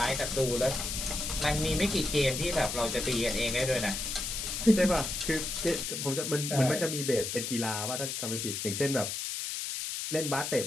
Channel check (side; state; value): left; noise; hiss, 3 dB below the sound